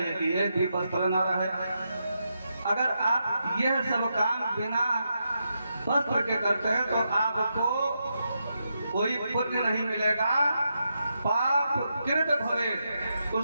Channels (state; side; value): inverted; both; correlation -0.84